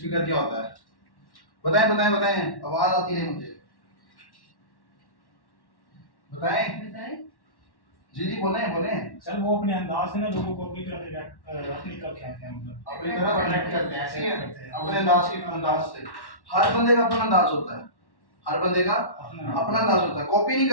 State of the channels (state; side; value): late; right; 1.1 ms